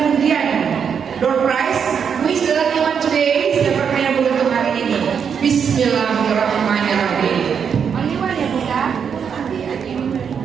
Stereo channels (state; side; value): quieter; left; 7.1 dB